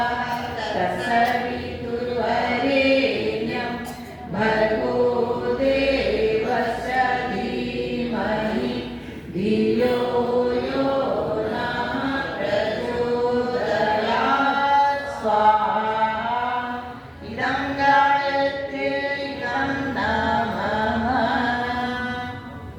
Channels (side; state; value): both; identical; correlation 1.00